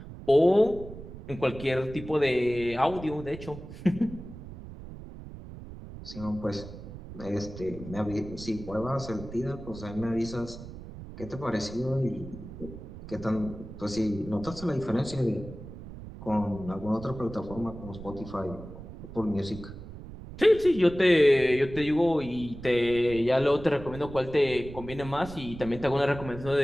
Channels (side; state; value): right; noise; rumble, 13 dB below the sound